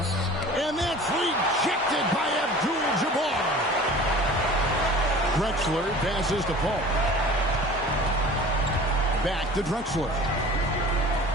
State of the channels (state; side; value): normal; both; correlation 0.42